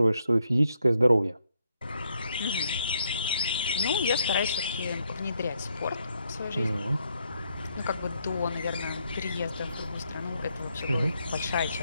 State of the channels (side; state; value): both; inverted; correlation -0.75